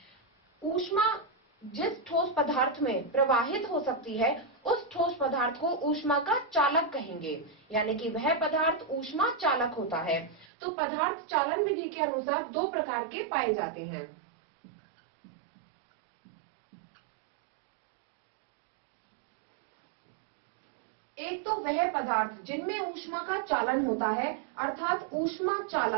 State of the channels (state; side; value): drops out; left; at 10.5 s